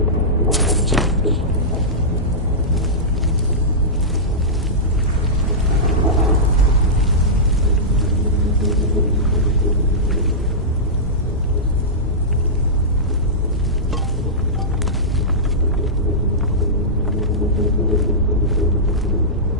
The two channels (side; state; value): both; normal; correlation -0.15